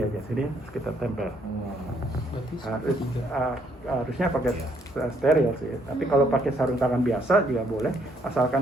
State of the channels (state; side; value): normal; both; correlation 0.69